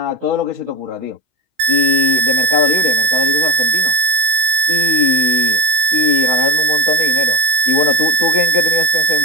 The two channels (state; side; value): late; left; 16 ms